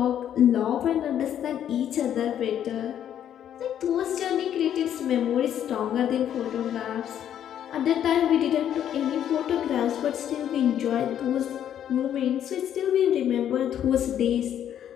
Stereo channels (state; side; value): quieter; right; 10.1 dB